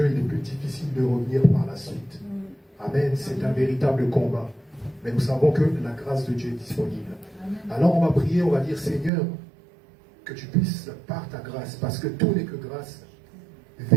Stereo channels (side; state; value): left; drops out; at 9.1 s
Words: il est plus difficile de revenir par la suite. Amen. C'est un véritable combat. Mais nous savons que la grâce de Dieu est disponible. Alors on va prier, on va dire, Seigneur, que tu puisses, par ta grâce, parce que tout n'est que grâce,